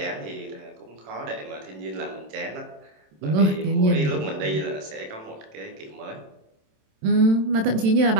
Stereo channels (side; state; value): left; late; 27 ms